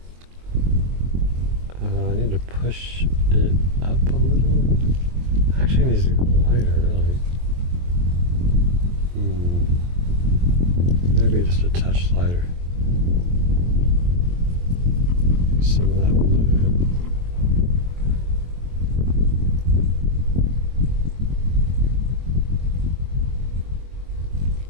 I need to push it up a little. Actually, it needs to go lighter, really. Maybe just a touch lighter. Some of that blue.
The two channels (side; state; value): left; late; 23 ms